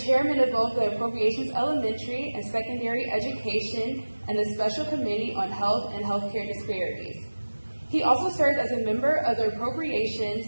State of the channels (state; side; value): inverted; both; correlation -1.00